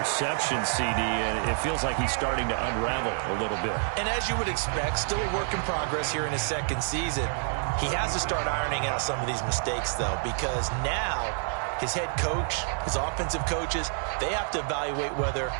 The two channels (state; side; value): silent; left; 59 dB below the other